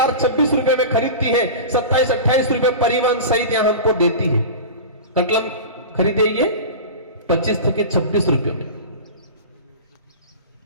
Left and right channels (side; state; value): both; inverted; correlation -0.30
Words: 26 रुपए में खरीदती है, 27-28 रुपए परिवहन सहित यहां हमको देती है। कटलम खरीदेंगे 25 के 26 रुपए में।